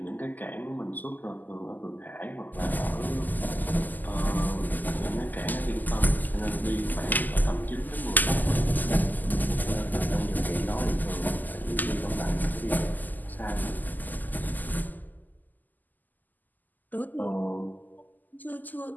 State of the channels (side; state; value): right; late; 0.085 ms